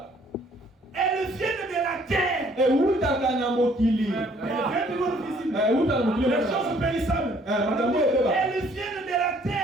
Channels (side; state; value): both; normal; correlation 0.61